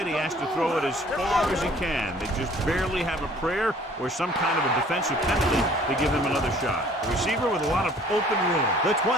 He has to throw it as far as he can. They just barely have a prayer or some kind of a defensive penalty to give him another shot. The receiver with a lot of open room. The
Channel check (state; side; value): normal; both; correlation 0.54